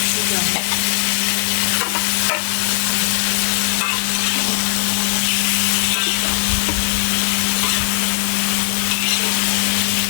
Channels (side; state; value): right; silent; 59 dB below the other